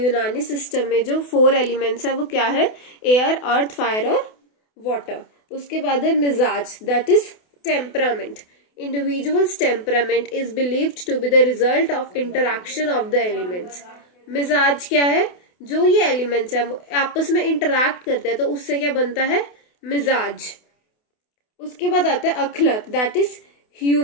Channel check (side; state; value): right; late; 28 ms